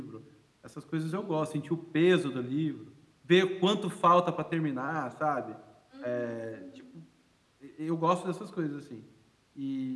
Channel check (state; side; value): identical; both; correlation 1.00